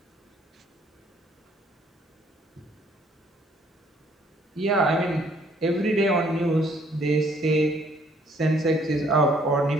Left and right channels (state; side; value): normal; both; correlation 0.63